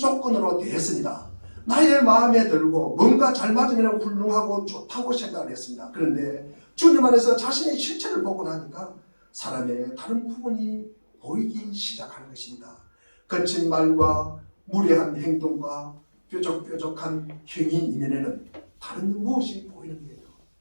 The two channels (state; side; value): inverted; both; correlation -1.00